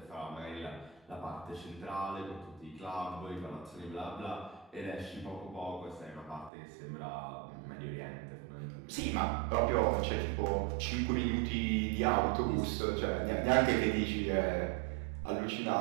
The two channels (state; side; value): drops out; left; at 6.5 s